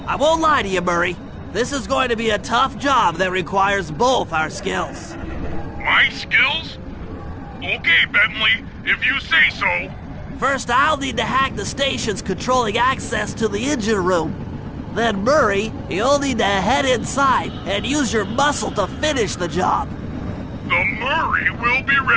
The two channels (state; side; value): identical; both; correlation 1.00